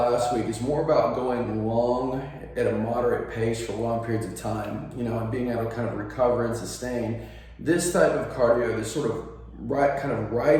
week is more about going long at a moderate pace for long periods of time, and being able to kind of recover and sustain. This type of cardio, this sort of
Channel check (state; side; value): identical; both; correlation 1.00